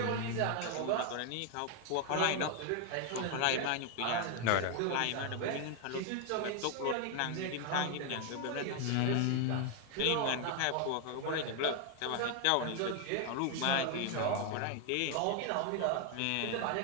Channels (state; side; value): different; both; correlation 0.01